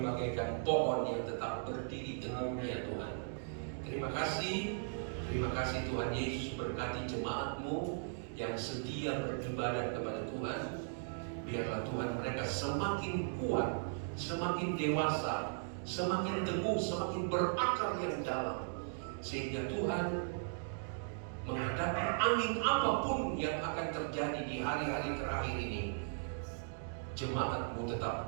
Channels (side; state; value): left; silent; digital silence